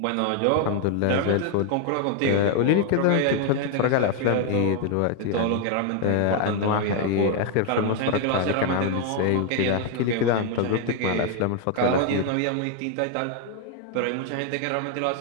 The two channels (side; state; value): both; different; correlation 0.01